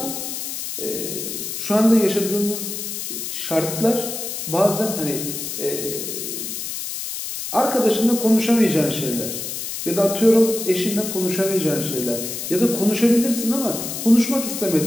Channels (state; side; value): noise; left; hiss, 6 dB below the sound